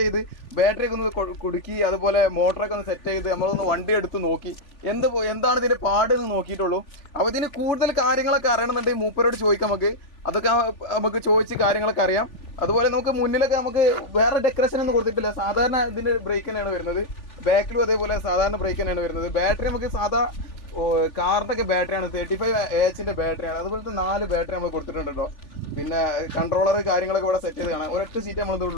ചെയ്ത് ബാറ്ററിയൊക്കെ ഒന്ന് കുടുക്കി, അതുപോലെ മോട്ടറൊക്കെ ഒന്ന് സെറ്റ് ചെയ്ത് നമ്മളൊന്ന് വണ്ടി എടുത്ത് നോക്കി എന്താണ് ഇതിൻ്റെ പാടെന്ന് നോക്കിയിട്ടുള്ളൂ. അപ്പോൾ ഇതിന് കൂടുതൽ കാര്യങ്ങളൊക്കെ അറിയണമെന്നുണ്ടെങ്കിൽ മൂപ്പരോട് ചോദിക്കാം. അതൊക്കെ നമുക്ക് ചോദിച്ച് കാര്യങ്ങളൊക്കെ അറിയാം. അതുപോലെ നമുക്ക് മുന്നിലൊക്കെ നമുക്ക് വേറെ ഡെക്കറേഷൻ ഒന്നും കൊടുത്തിട്ടില്ല. സാധാരണ ഇതിൻ്റെ ബ്രേക്ക് തന്നെയാണ് വരുന്നത്. ബാക്കിലും അതേപോലെ സാധാരണ ബ്രേക്ക് തന്നെയാണ് വരുന്നത്. ബാറ്ററി നമുക്ക് സാധാ കാറിൻ്റെ ഒക്കെ ബാറ്ററിയാണ്, 35 AHൻ്റെ ബാറ്ററിയാണ്. അതുപോലത്തെ 4 ബാറ്ററി നമ്മൾ കൊടുത്തിട്ടുണ്ട് കേട്ടോ. പിന്നെ കൺട്രോളർ കാര്യങ്ങളൊക്കെ ഇവിടെ സെറ്റ് ചെയ്ത് കാണാം. ഒരൊറ്റ സീറ്റ് നമ്മൾ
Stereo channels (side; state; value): right; late; 3.4 ms